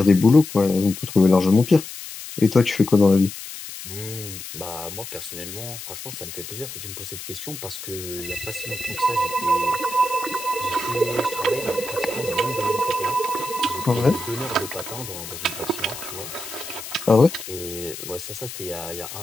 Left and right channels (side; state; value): left; noise; hiss, 11 dB below the sound